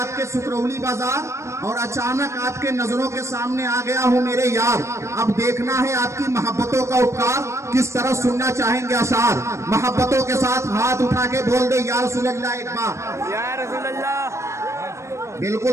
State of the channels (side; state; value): left; late; 0.14 ms